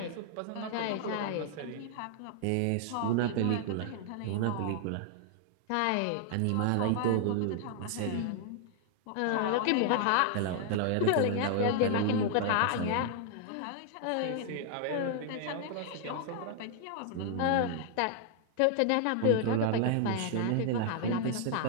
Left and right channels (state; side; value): different; both; correlation 0.00